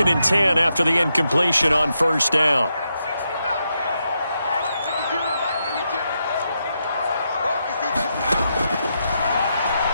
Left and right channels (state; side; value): inverted; both; correlation -0.83